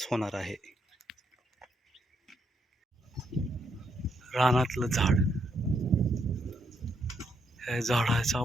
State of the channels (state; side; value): normal; both; correlation 0.76